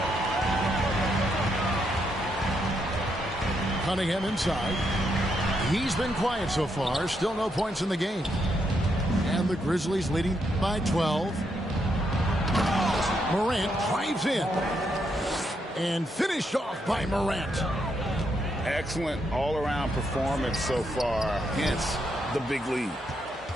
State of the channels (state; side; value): normal; both; correlation 0.78